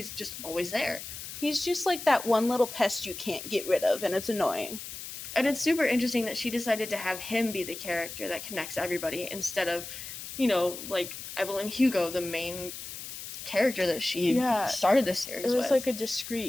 just always there. He's just like that one little pest you can't get rid of, and it's annoying. And it's super interesting that she decided to have him be the character that connects everybody instead of, Evelyn Hugo, the main character that she started this series with. It was like a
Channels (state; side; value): noise; left; hiss, 10 dB below the sound